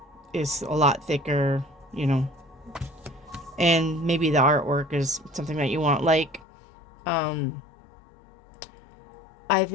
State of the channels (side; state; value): right; drops out; at 6.5 s